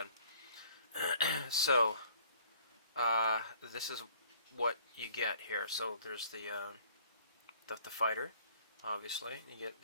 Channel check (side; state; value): both; inverted; correlation -0.56